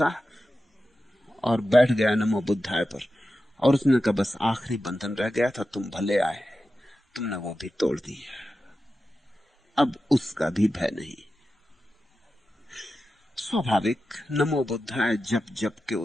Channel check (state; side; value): normal; both; correlation 0.92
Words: और बैठ गया नमो बुद्धाय पर। और उसने कहा, बस आखिरी बंधन रह गया था, तुम भले आए, तुमने वो भी तोड़ दिया, अब उसका भी भय नहीं। स्वाभाविक नमो बुद्धाय जप जप के